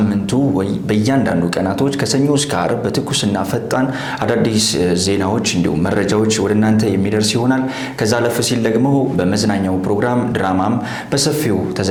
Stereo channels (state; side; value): identical; both; correlation 1.00